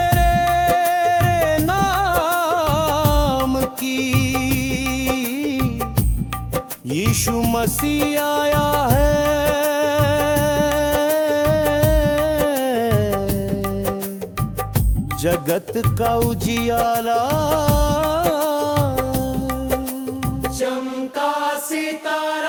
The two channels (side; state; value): both; identical; correlation 1.00